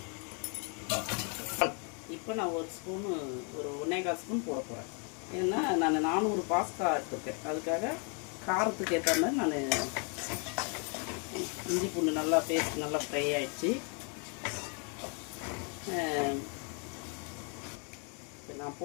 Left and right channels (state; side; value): quieter; right; 37.9 dB